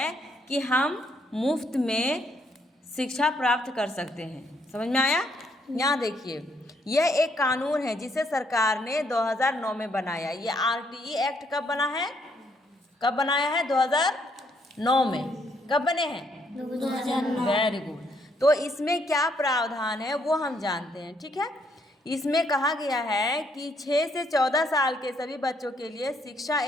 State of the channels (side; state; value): both; normal; correlation 0.71